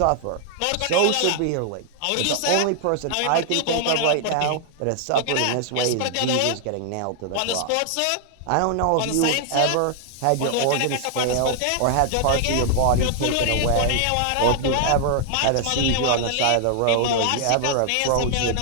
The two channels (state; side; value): different; both; correlation 0.00